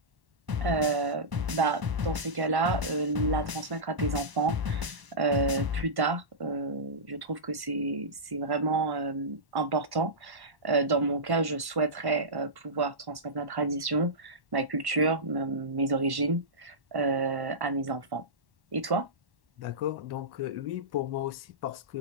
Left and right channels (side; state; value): left; late; 1.1 ms